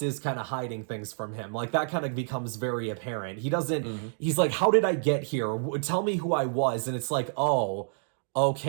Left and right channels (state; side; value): silent; left; digital silence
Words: is kind of hiding things from him. Like, that kind of becomes very apparent. He doesn't, he's like, how did I get here? Tell me who I was. And it's like, oh,